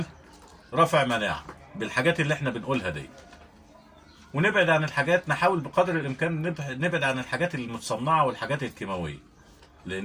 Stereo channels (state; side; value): identical; both; correlation 1.00